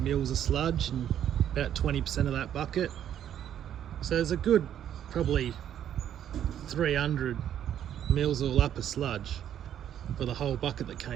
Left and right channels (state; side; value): quieter; left; 10.2 dB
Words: of sludge and about 20% of that bucket. So there's a good probably 300 mils all up of sludge for the whole bucket that